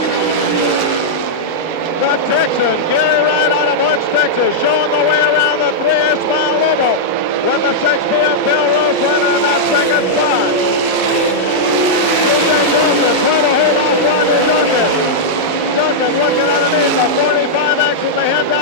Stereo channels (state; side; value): normal; both; correlation -0.06